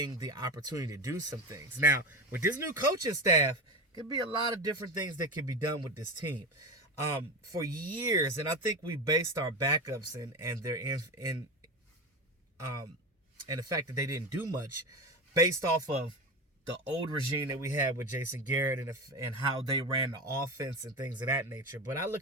the opportunity to do some things. Now, with this new coaching staff, could be a lot of different things that can be done with this team. For years, and I think we based our backups and their and the fact that they didn't do much based off of the old regime that we had with Jason Garrett and how they ran the offense and things of that nature. But I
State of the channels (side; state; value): both; normal; correlation 0.22